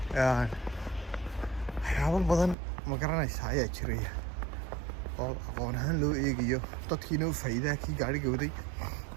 waxyaabo badan ma garanaysaa ayaa jiraya oo aqoon ahaan loo eegayo dadkiina u faa'iidaha kii gaadhiga waday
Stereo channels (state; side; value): drops out; left; at 2.6 s